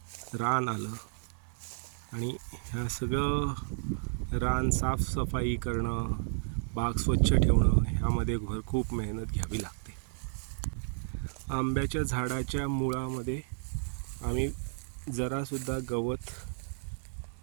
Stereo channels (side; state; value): left; silent; digital silence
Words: रान आलं आणि ह्या सगळं रान साफसफाई करणं, बाग स्वच्छ ठेवणं ह्यामध्ये खूप मेहनत घ्यावी लागते. आंब्याच्या झाडाच्या मुळामध्ये आम्ही जरासुद्धा गवत